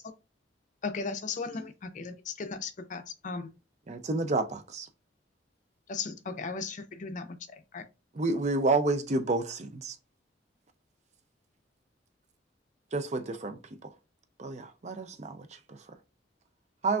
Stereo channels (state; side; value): normal; both; correlation 0.23